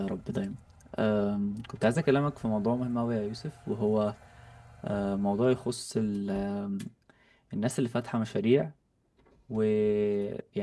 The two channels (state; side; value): identical; both; correlation 1.00